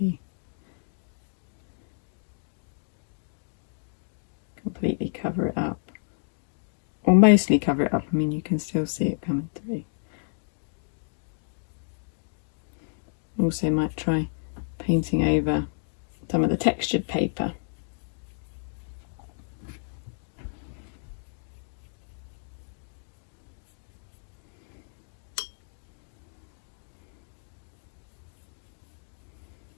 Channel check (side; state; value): right; silent; digital silence